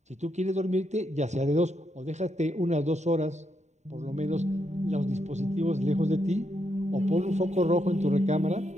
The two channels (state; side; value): late; left; 0.34 ms